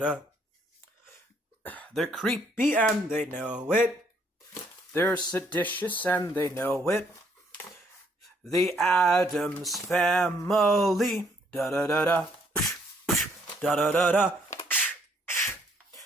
They're creepy and they know it. They're seditious and they know it. The Addams Family. Da da da da. Da da da da.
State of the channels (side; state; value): both; normal; correlation 0.67